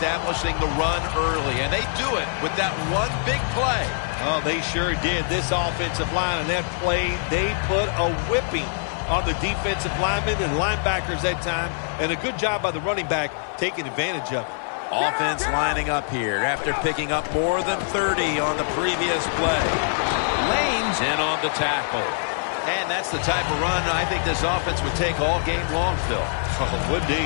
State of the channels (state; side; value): silent; right; 57 dB below the other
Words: the run early, and they do it with that one big play. Oh, they sure did. This offensive line and that play, they put a whipping on the defensive linemen and linebackers that time, and a good job by the running back taking advantage of it. Offense lining up here after picking up more than 30 on the previous play. Lane's in on the tackle. And that's the type of run I think this offense would take all game long, Phil. Oh, would